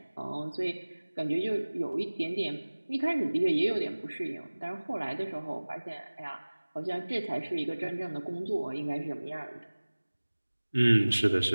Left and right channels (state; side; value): inverted; both; correlation -1.00